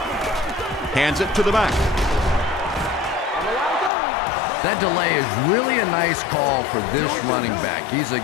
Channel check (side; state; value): right; drops out; at 3.9 s